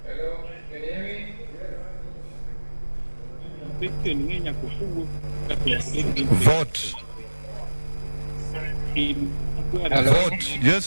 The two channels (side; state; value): both; inverted; correlation -1.00